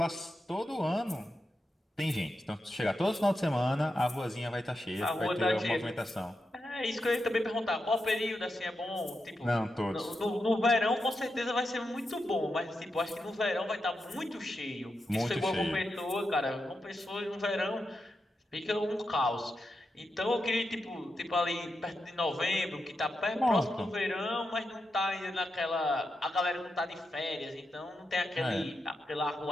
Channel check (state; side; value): normal; both; correlation 0.87